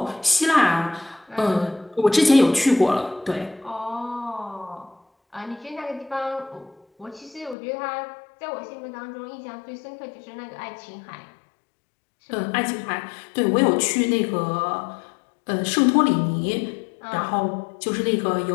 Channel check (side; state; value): right; drops out; at 7.6 s